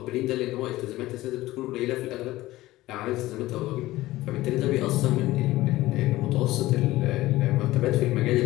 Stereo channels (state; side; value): quieter; right; 17.2 dB